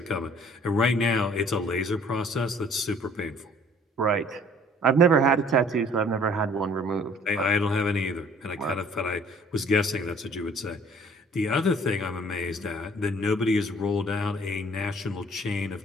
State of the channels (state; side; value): normal; both; correlation 0.55